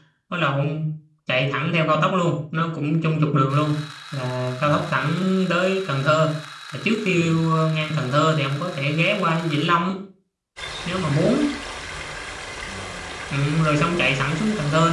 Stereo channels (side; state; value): both; identical; correlation 1.00